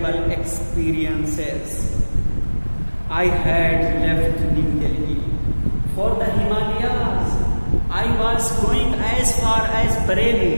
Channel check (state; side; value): inverted; both; correlation -1.00